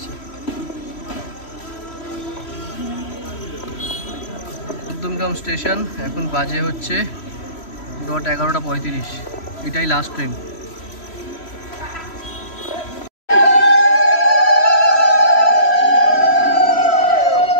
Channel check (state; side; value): late; right; 3.0 ms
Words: মধ্যমগ্রাম স্টেশন, এখন বাজে হচ্ছে 11:35, এটাই লাস্ট ট্রেন।